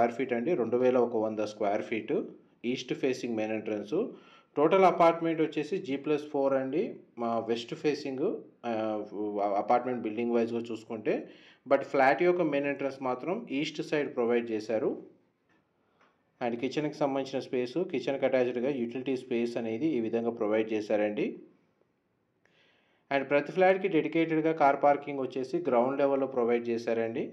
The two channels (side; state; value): both; identical; correlation 1.00